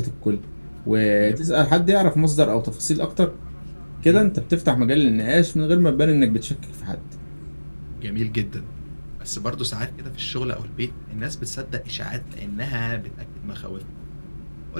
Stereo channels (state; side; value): inverted; both; correlation -1.00